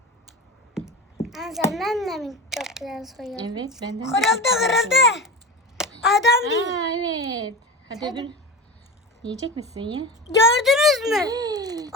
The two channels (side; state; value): both; normal; correlation 0.28